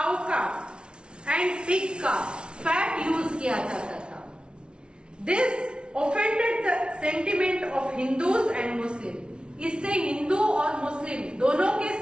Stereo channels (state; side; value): late; left; 0.057 ms